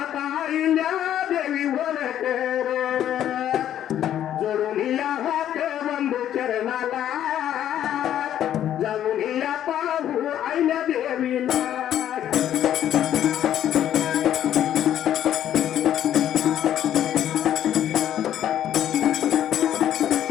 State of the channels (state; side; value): quieter; right; 11.0 dB